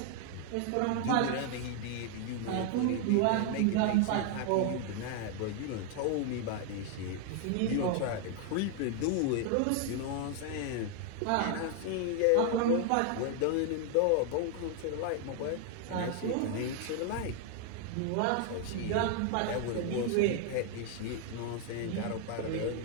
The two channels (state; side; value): different; both; correlation 0.00